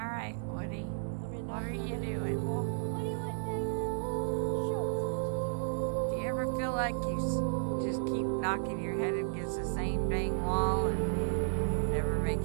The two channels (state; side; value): silent; left; 56 dB below the other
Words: right, Woody. What are you doing? What do you want, Daddy? Show Do you ever feel like you just keep knocking your head against the same dang wall and never make